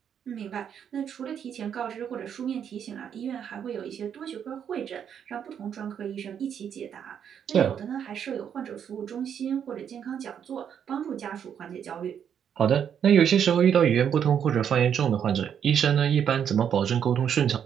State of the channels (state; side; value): quieter; left; 8.4 dB